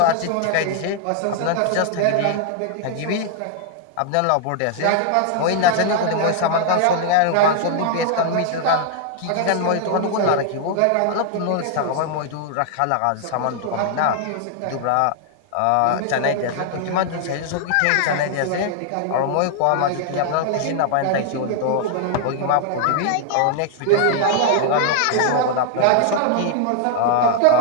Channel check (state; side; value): different; both; correlation 0.00